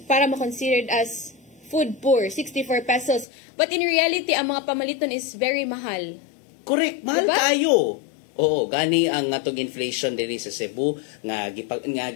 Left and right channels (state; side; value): drops out; right; at 3.2 s